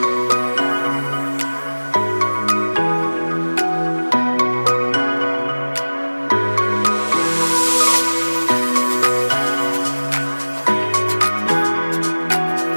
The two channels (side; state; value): both; inverted; correlation -1.00